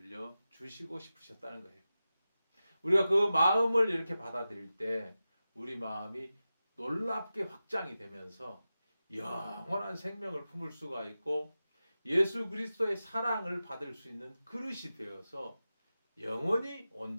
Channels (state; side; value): inverted; both; correlation -0.94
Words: 싶으셨다는 거예요. 우리가 그 마음을 이렇게 받아들일 때 우리 마음이 놀랍게 확장이 되면서 영원한 생명을 품을 수가 있고 예수 그리스도의 사랑을 받을 수 있는 그릇이 되어서 영원히